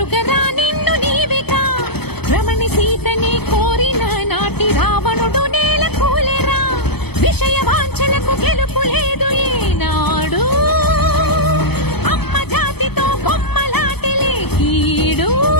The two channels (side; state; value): right; late; 0.97 ms